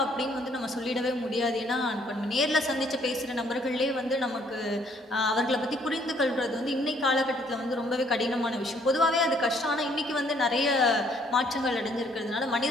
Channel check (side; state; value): both; normal; correlation 0.65